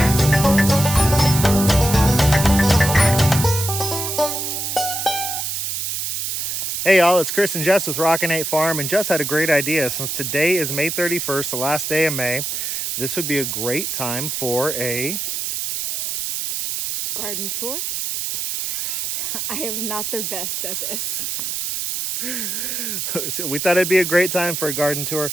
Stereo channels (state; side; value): noise; right; hiss, 3 dB below the sound